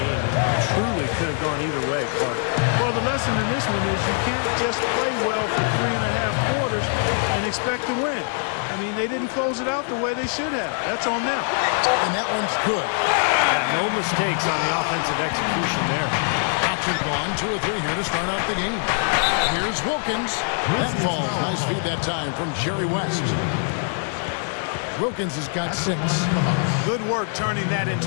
It truly could have gone either way, Clark. Well, the lesson in this one is you can't just play well for 3.5 quarters and expect to win. I mean, they didn't close it out the way they should have. That's on them. And that one's good. Yeah, no mistakes on the offensive execution there. Action gone. 2 or 3 here to start out the game. Here's Wilkins. That falls. Nice feed that time from Jerry West. Wilkins has got 6. Good work turning that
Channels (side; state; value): right; silent; 57 dB below the other